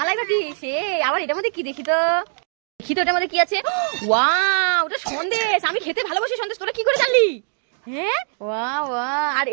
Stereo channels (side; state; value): left; silent; digital silence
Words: সে, আবার এটার মধ্যে কি দেখি তো, দেখি তো এটার মধ্যে কি আছে। ওয়াও, ওটা সন্দেশ, আমি খেতে ভালোবাসি সন্দেশ, তোরা কি করে জানলি? হ্যাঁ ওয়া ওয়া, আর